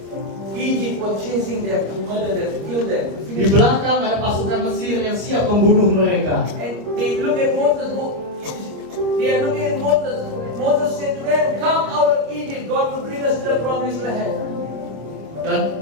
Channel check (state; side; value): late; left; 25 ms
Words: Egypt were chasing them to murder them, to kill them. to di finish them. belakang ada pasukan Mesir yang siap membunuh mereka. And they look at Moses. They are looking at Moses. Moses said to them, "Come out of Egypt. God will bring us to the promised land."